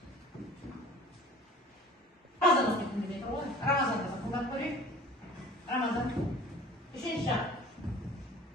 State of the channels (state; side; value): normal; both; correlation 0.46